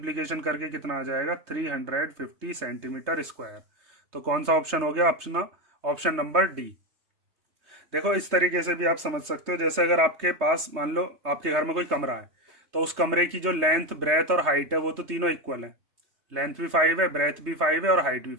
करके कितना आ जाएगा 350 सेंटीमीटर स्क्वायर। तो कौन सा ऑप्शन हो गया, ऑप्शन नंबर डी। देखो इस तरीके से भी आप समझ सकते हो, जैसे अगर आपके पास मान लो आपके घर में कोई कमरा है तो उस कमरे की जो लेंथ, ब्रेथ और हाइट है वो तो तीनों इक्वल है। लेंथ भी 5 है, ब्रेथ भी 5 है और हाइट भी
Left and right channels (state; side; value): late; left; 3.2 ms